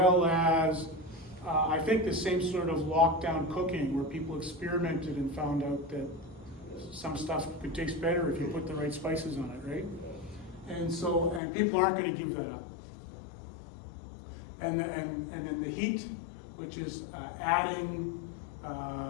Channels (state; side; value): drops out; right; at 11.4 s